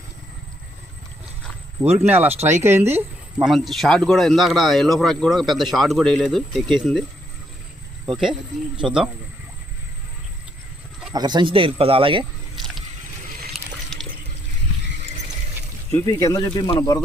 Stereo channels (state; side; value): normal; both; correlation 0.73